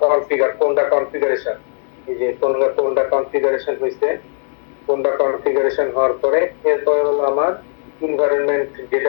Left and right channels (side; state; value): right; silent; digital silence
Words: কোনটা কনফিগারেশন। এই যে কোনটা কনফিগারেশন হয়েছে, কোনটা কনফিগারেশন হওয়ার পরে এরপরে হলো আমার এনভায়রনমেন্ট